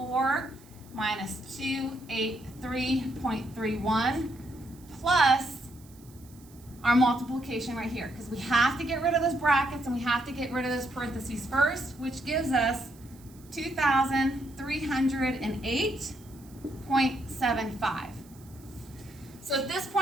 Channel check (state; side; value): noise; right; hiss, 25 dB below the sound